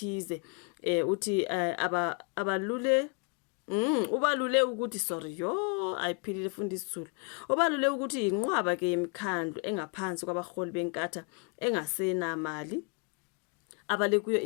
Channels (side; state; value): right; quieter; 35.0 dB